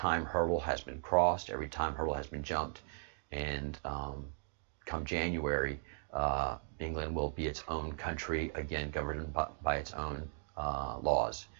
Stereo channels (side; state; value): left; silent; digital silence